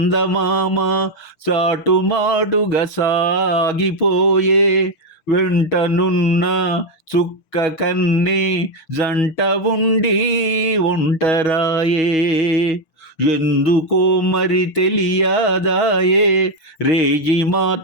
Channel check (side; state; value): right; late; 6.6 ms